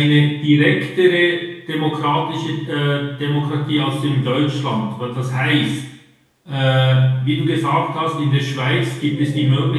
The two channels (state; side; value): identical; both; correlation 1.00